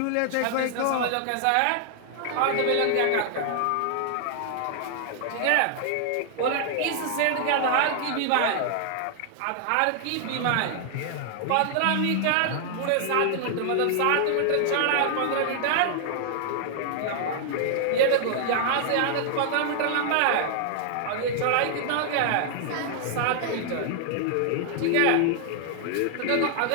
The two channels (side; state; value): both; different; correlation 0.00